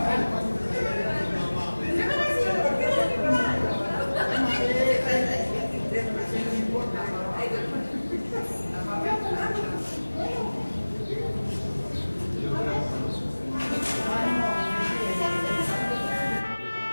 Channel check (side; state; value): both; inverted; correlation -1.00